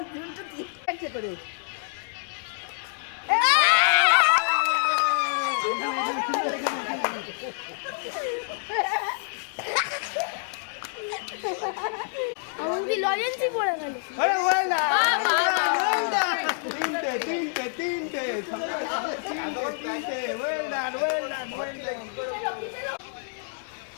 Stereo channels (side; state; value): right; silent; digital silence